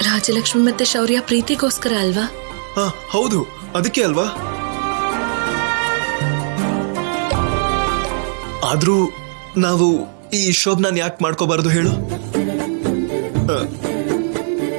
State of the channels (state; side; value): silent; left; digital silence